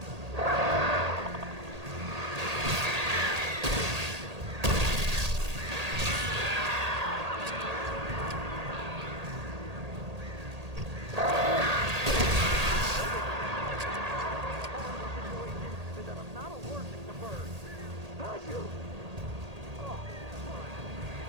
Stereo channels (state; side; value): late; left; 1.8 ms